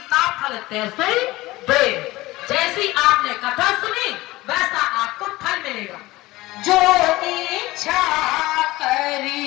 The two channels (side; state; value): right; quieter; 19.1 dB